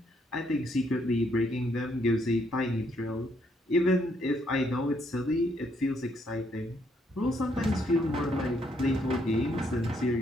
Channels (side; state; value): both; normal; correlation 0.72